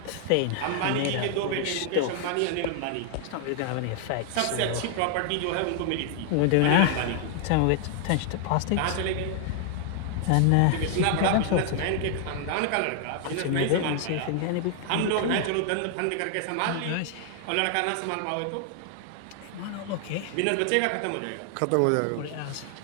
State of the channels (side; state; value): both; different; correlation 0.00